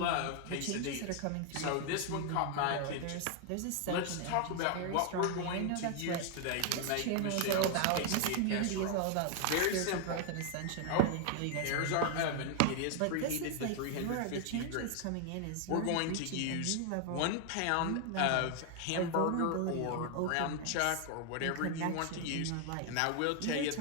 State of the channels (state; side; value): different; both; correlation 0.00